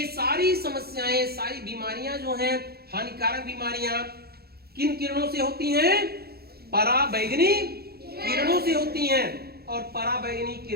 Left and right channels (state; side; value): late; left; 0.46 ms